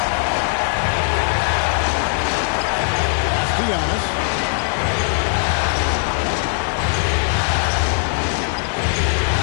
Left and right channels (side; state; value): right; silent; digital silence